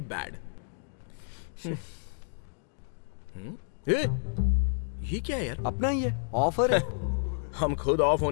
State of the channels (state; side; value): silent; right; digital silence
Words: बैड। ये क्या है यार? अपना ही है, ऑफर है। हम खुद ऑफ